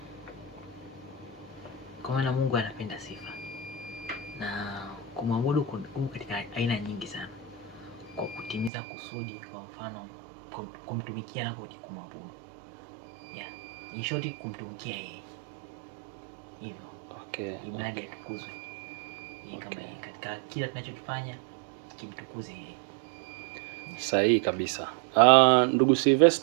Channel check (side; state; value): left; drops out; at 8.7 s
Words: Kwa maana Mungu anapenda sifa. Na kumwabudu kuna katika aina nyingi sana. Kwa kutimiza kusudi, kwa mfano kumtumikia na kumwabudu. In short, kumtumikia yeye. Hivyo. Okay. Imradi atukuzwe. Yeye kama yeye katika kila tunachokifanya kimtukuze yeye. Sahihi kabisa. Ndugu